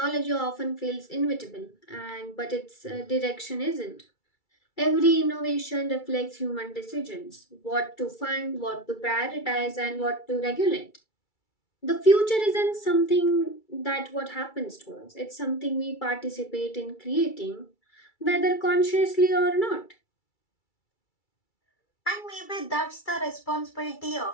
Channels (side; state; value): right; late; 2.3 ms